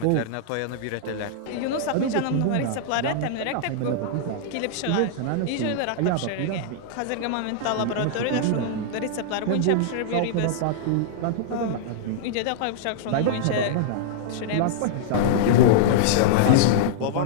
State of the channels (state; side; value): different; both; correlation -0.02